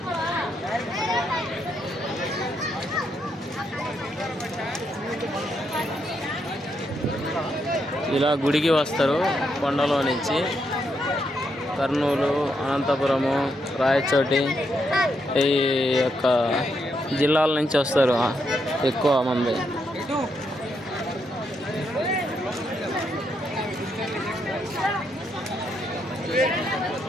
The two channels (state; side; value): normal; both; correlation 0.79